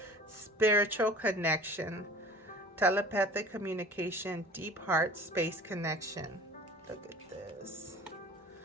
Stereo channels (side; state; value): both; normal; correlation 0.43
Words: Spiritual connection, telepathic communication, deep heart space connection. Look at this.